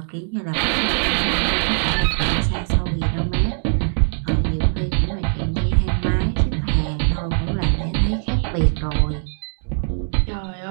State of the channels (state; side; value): silent; left; 60 dB below the other